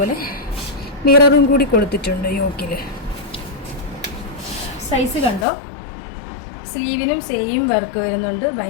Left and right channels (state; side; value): drops out; right; at 5.5 s